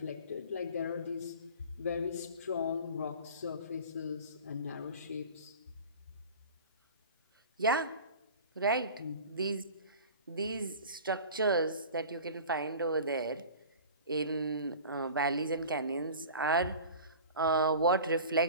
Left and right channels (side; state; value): both; inverted; correlation -0.39